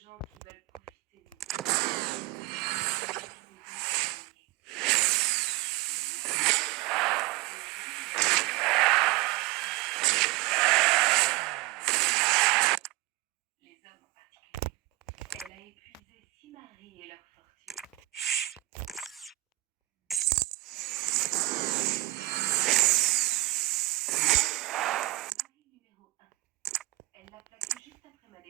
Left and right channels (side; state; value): left; quieter; 20.5 dB